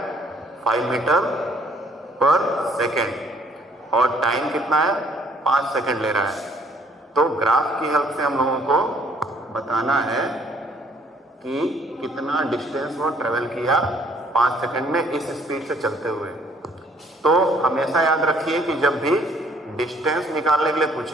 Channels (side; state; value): both; normal; correlation 0.62